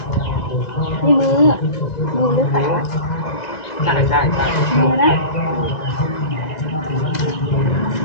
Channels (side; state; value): right; late; 1.9 ms